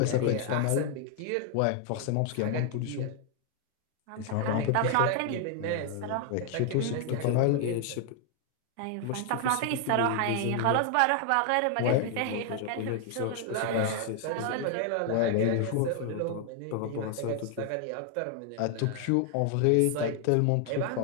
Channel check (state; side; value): different; both; correlation 0.00